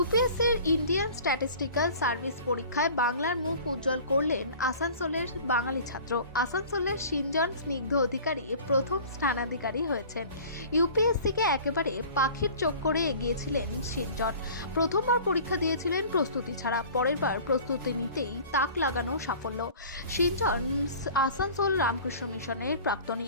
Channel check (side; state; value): both; inverted; correlation -0.44